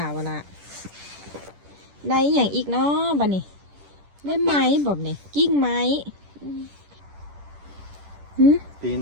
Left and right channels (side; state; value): left; late; 10 ms